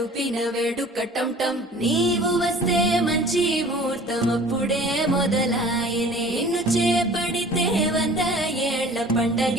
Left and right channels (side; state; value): both; normal; correlation 0.47